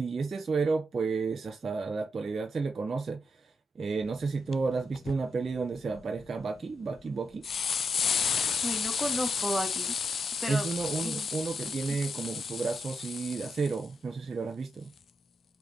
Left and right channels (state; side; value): normal; both; correlation 0.82